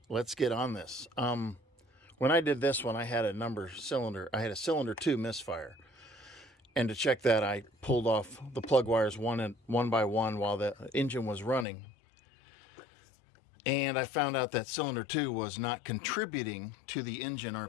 let's get on this. When I did this one, I had a cylinder 2 misfire. And to check that, I pulled off the plug wires one by one while the engine was running. And I found out that cylinder 2 was not contributing to the engine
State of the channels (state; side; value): drops out; right; at 11.7 s